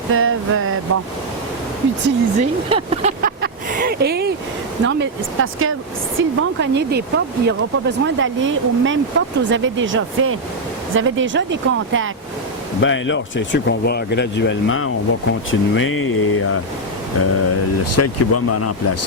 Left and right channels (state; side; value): normal; both; correlation 0.00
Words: peuvent, utiliser. Et, non, mais c'est parce que s'ils vont cogner des portes, il n'y aura pas besoin d'aller aux mêmes portes que vous avez déjà fait. Vous avez déjà des contacts. Bien là, c'est sûr qu'on va graduellement, on va continuer et celle qui va me